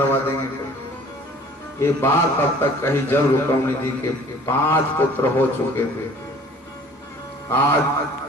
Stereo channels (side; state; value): both; normal; correlation 0.50